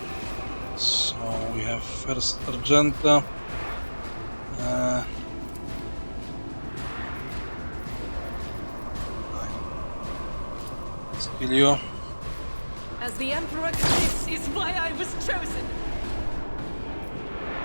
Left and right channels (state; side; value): inverted; both; correlation -1.00